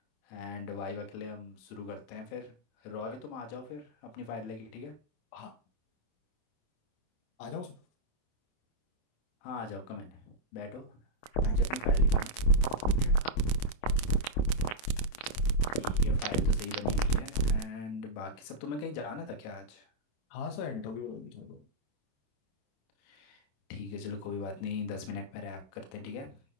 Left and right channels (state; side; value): late; right; 26 ms